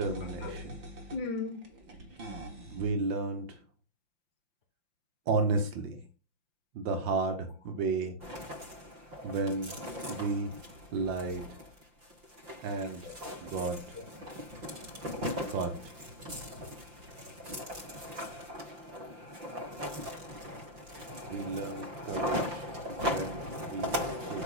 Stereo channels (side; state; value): left; late; 5.8 ms